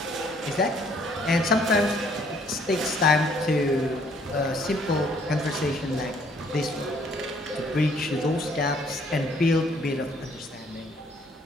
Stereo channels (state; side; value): normal; both; correlation 0.63